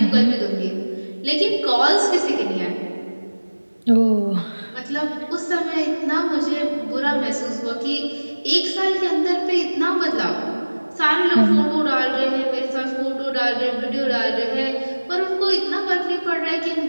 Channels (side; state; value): both; inverted; correlation -1.00